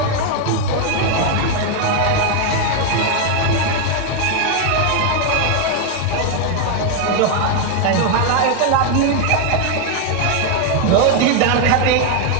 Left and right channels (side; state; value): both; different; correlation 0.01